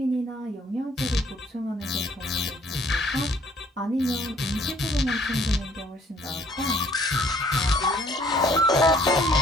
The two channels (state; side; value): normal; both; correlation 0.60